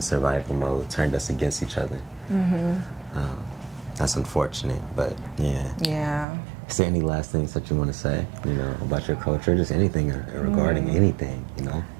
survival mode, turned us against each other. That's unfortunate, but yeah. Yeah. Is there any last things that you want to say, you know, about your culture? Just anything regarding anything, you know?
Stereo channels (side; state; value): left; drops out; at 6.2 s